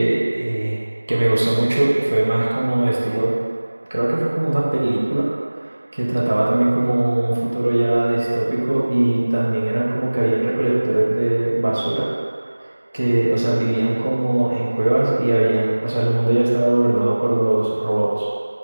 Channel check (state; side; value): inverted; both; correlation -1.00